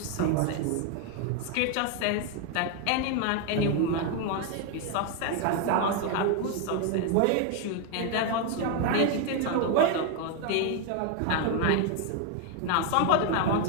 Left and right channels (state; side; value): different; both; correlation 0.01